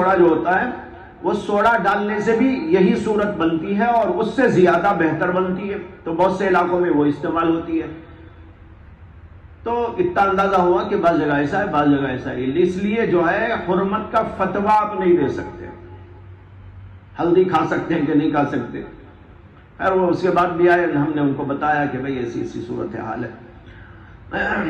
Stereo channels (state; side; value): identical; both; correlation 1.00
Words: جو ہوتا ہے وہ سوڈا ڈالنے سے بھی یہی صورت بنتی ہے اور اس سے زیادہ بہتر بنتی ہے، تو بہت سے علاقوں میں وہ استعمال ہوتی ہے۔ تو اتنا اندازہ ہوا کہ بعض جگہ ایسا ہے بعض جگہ ایسا ہے، اس لیے جو ہے حرمت کا فتویٰ آپ نہیں دے سکتے، ہلدی کھا سکتے ہیں کہ نہیں کھا سکتے۔ خیر وہ اس کے بعد بھی آئے، ہم نے ان کو بتایا کہ بھئی ایسی ایسی صورتحال ہے۔